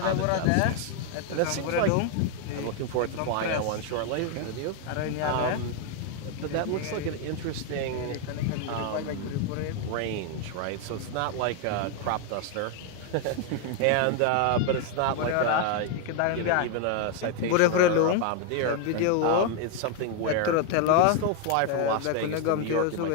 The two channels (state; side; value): different; both; correlation 0.01